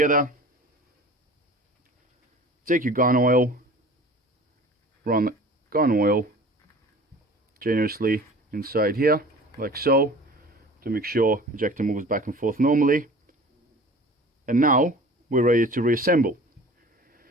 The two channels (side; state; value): both; normal; correlation 0.43